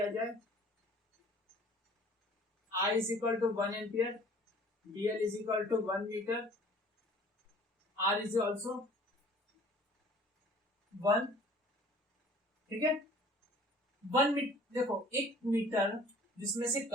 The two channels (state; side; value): normal; both; correlation 0.51